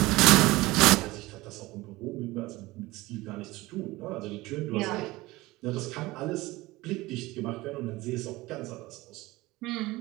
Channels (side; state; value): left; quieter; 19.9 dB